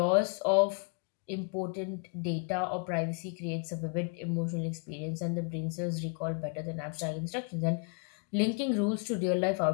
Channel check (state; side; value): quieter; right; 36.5 dB